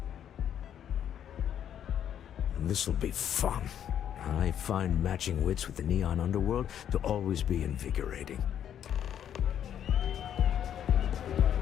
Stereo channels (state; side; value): quieter; right; 9.7 dB